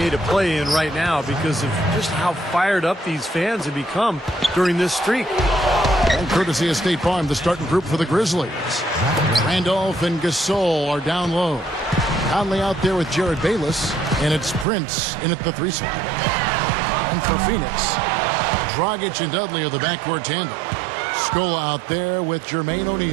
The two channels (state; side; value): drops out; left; at 14.7 s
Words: to play in right now because of just how fired up these fans have become during this streak. And courtesy of State Farm, the starting group for the Grizzlies. Randolph and Gasol are down low. Conley out there with Jared Bayless, and it's Prince in at the 3 spot. And for Phoenix, Dragic and Dudley are the backcourt tandem. Scola out there with Jermaine